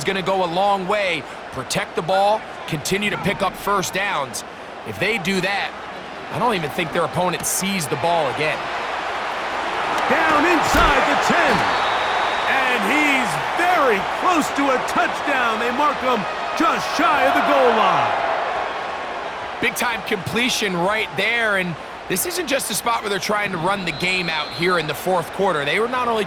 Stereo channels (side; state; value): both; identical; correlation 1.00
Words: going to go a long way. Protect the ball, continue to pick up first downs. If they do that, I don't even think their opponent sees the ball again. Down inside the 10. And he's very close to a touchdown. They mark him just shy of the goal line. Big-time completion right there, and this isn't just a spot where they're trying to run the game out here in the fourth quarter. They were not only